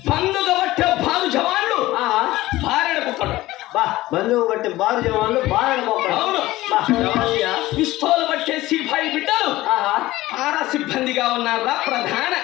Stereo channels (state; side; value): quieter; right; 17.4 dB